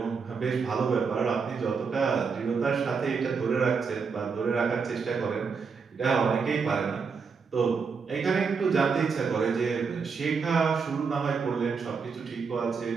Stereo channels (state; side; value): quieter; left; 5.4 dB